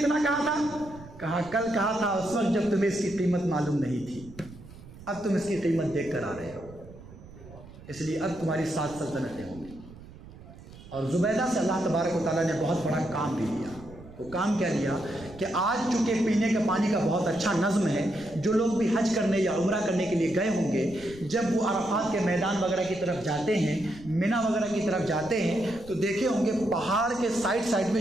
कहा था। कहा कल कहा था उस वक्त जब तुम्हें इसकी कीमत मालूम नहीं थी, अब तुम इसकी कीमत देख कर आ रहे हो, इसलिए अब तुम्हारी 7 सल्तनतें होंगी। और जुबैदा से अल्लाह तबारक व तआला ने बहुत बड़ा काम भी लिया। वो काम क्या लिया कि आज चूँकि पीने के पानी का बहुत अच्छा नज़्म है, जो लोग भी हज करने या उम्रा करने के लिए गए होंगे, जब वो अरफात के मैदान वगैरह की तरफ जाते हैं, मिना वगैरह की तरफ जाते हैं, तो देखे होंगे पहाड़ के साइड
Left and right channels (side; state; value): right; noise; rumble, 18 dB below the sound